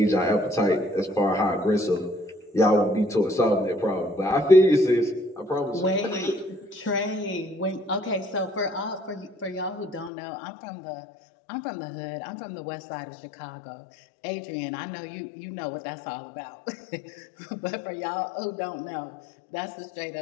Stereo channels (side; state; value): right; drops out; at 10.1 s